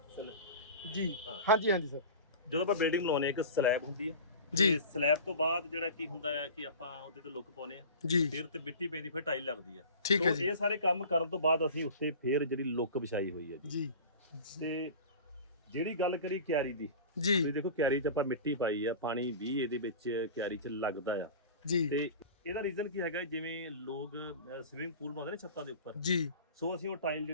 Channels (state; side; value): inverted; both; correlation -0.36